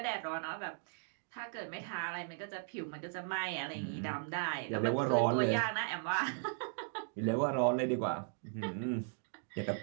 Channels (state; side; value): silent; left; digital silence